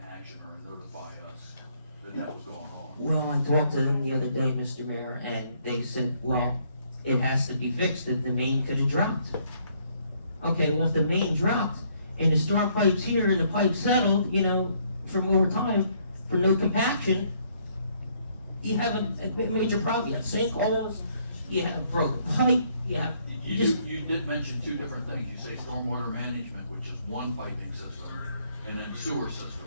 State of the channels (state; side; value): inverted; both; correlation -0.67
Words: action or notify us that was going on. Well, I talked to them the other day, Mr. Mayor, and they said, well, it has to be fixed, that the main could have dropped. Okay, well, if the main dropped, and the storm pipe's here, and the pipe settled, from over time, for no compaction, you have a major problem. You have sinkholes, you have broken pipe, You did mention two different things. You say stormwater management, which is one piping system, and then sewer